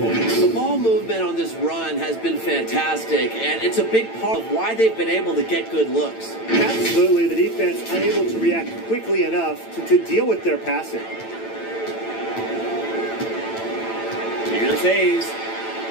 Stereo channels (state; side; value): late; right; 9.0 ms